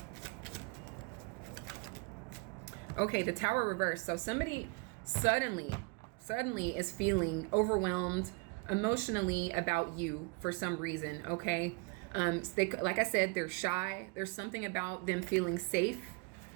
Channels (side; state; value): left; quieter; 28.2 dB